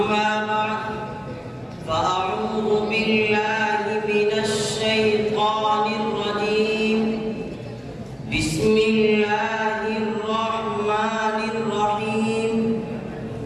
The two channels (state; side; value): identical; both; correlation 1.00